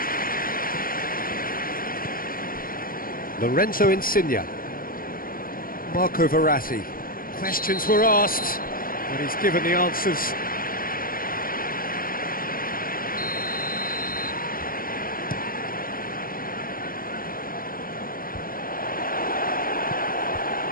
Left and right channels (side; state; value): right; late; 0.41 ms